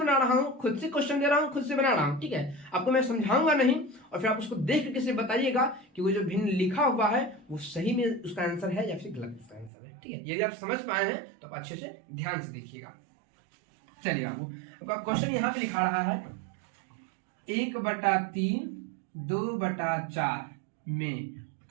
रहा हूँ, खुद से क्वेश्चन दे रहा हूँ, खुद से बना रहा हूँ। ठीक है, आपको मैं समझाऊंगा नहीं और फिर आप उसको देख करके से बताइएगा कि वो जो भिन्न लिखा हुआ है वो सही में उसका आंसर है या फिर गलत उसका आंसर है। ठीक है, यदि आप समझ पाए हैं तो आप अच्छे से ध्यान से देखिएगा। चलिए आपका क्वेश्चन यहाँ पे लिखा रहा है 1/3 2/4 में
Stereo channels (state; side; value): drops out; left; at 9.7 s